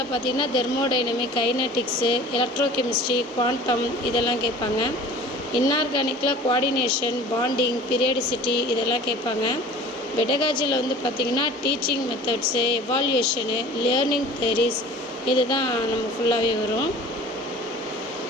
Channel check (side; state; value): both; normal; correlation 0.43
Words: பார்த்திங்கன்னா தெர்மோடைனமிக், கைனட்டிக்ஸு, எலக்ட்ரோகெமிஸ்ட்ரி, குவாண்டம் இதெல்லாம் கேட்பாங்க. இன்ஆர்கானிக்கில் கோஆர்டினேஷன், பாண்டிங், பீரியாடிசிட்டி இதெல்லாம் கேட்பாங்க. பெடகாஜியில் வந்து பார்த்திங்கன்னா டீச்சிங் மெத்தட்ஸு, எவால்யூஷனு, லேர்னிங் தியரிஸ் இது தான் நம்ம ஃபுல்லாகவே வரும்.